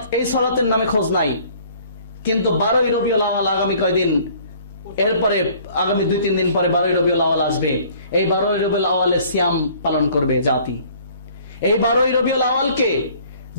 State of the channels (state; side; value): inverted; both; correlation -0.54